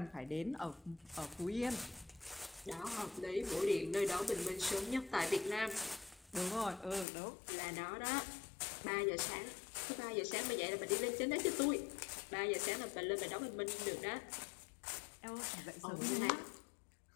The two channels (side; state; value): right; drops out; at 7.1 s